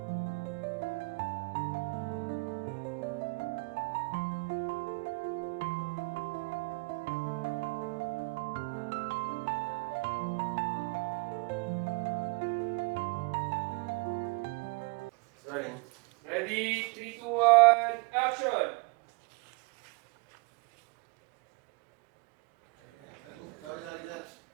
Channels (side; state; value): left; quieter; 29.1 dB